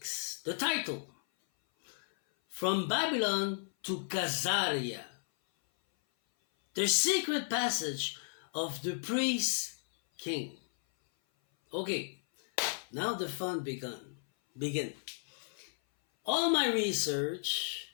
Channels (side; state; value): right; silent; 55 dB below the other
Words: The title, From Babylon to Khazaria. The secret passage of the priest king. Okay, now the fun begin. All my research